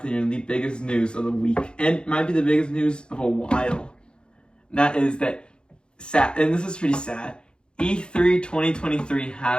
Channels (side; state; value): right; late; 0.051 ms